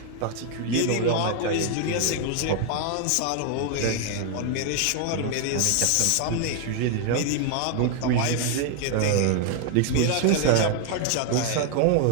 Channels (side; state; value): both; different; correlation 0.00